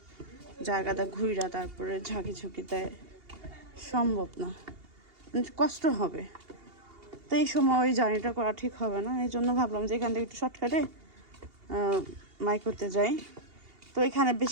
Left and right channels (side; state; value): left; late; 2.8 ms